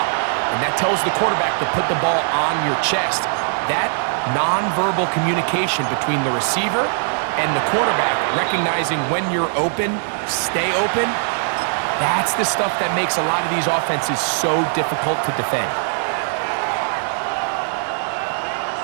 And that tells the quarterback to put the ball on your chest. That nonverbal communication between the receiver and the quarterback, recognizing when you're open, stay open, that's the stuff that makes a lot of these offenses so difficult to defend.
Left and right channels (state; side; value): silent; left; 66 dB below the other